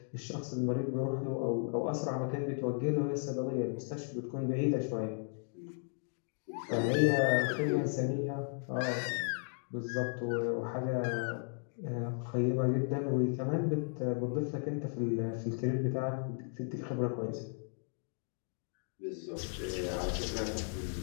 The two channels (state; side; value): silent; right; 54 dB below the other